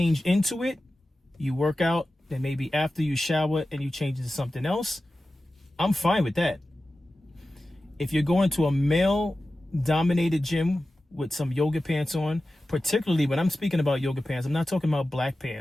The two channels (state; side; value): normal; both; correlation 0.94